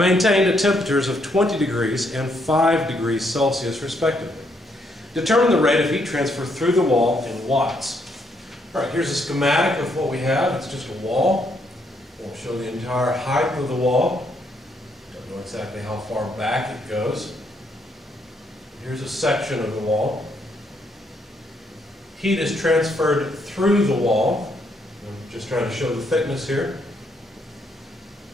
at temperatures of 20 degrees and 5 degrees Celsius respectively. Determine the rate of heat transfer through the wall in watts. All right, here's a schematic of what we have. It's just a wall. Won't show the entire height of the wall. Don't know exactly how far back it goes. Here's a section of the wall. Heat is transferred through the wall. I'm just trying to show the thickness here,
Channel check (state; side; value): normal; both; correlation 0.74